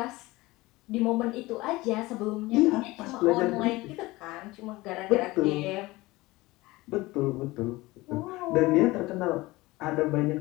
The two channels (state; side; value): quieter; right; 20.4 dB